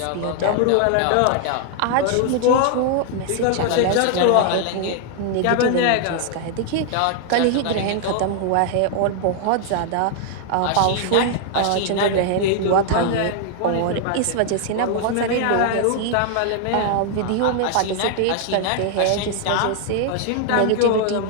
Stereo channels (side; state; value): both; different; correlation 0.00